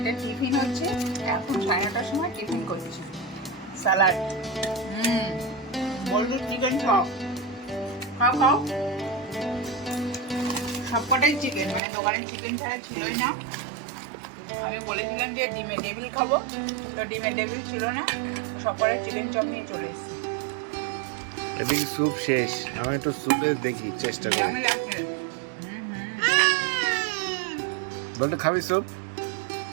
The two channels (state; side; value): drops out; left; at 11.8 s